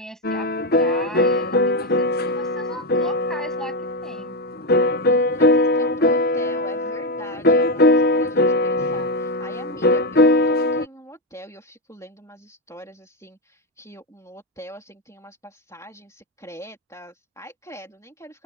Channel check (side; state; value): both; normal; correlation 0.08